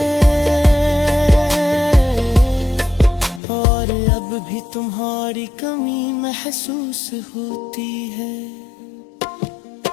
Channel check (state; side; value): drops out; right; at 3.4 s